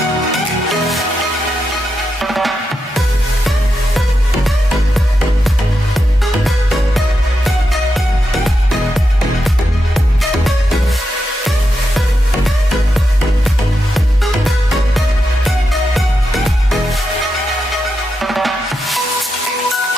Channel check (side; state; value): both; normal; correlation 0.86